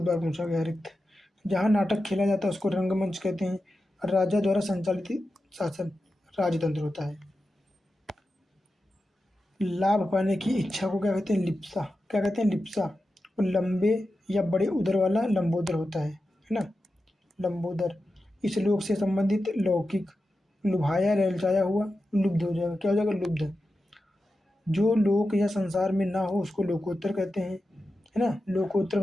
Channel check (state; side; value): normal; both; correlation 0.91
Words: बार पूछा गया, रिक्त। जहाँ नाटक खेला जाता है उसको रंगमंच कहते हैं। राजा द्वारा संचालित शासन राजतंत्र होता है। लाभ पाने की इच्छा को क्या कहते हैं, लिप्सा, क्या कहते हैं, लिप्सा। और लंबे या बड़े उदर वाला लंबोदर होता है ना, लंबोदर। इस लोक से संबंधित लौकिक। लुभाया ललचाया हुआ लुब्ध हो जाएगा, क्या हो जाएगा, लुब्ध। जो लोक या संसार में ना हो उसको लोकोत्तर कहते हैं, है ना। लोकोत्तर